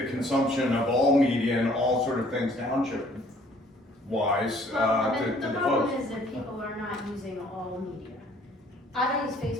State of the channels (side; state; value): both; normal; correlation 0.58